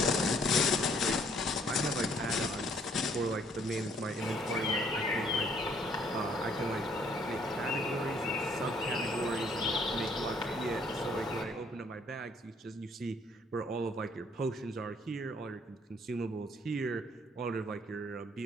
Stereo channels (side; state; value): both; normal; correlation 0.64